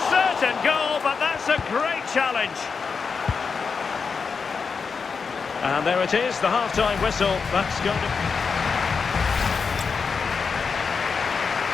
certain goal, but that's a great challenge. And there it is, the half-time whistle. That's going to...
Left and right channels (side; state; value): right; quieter; 5.4 dB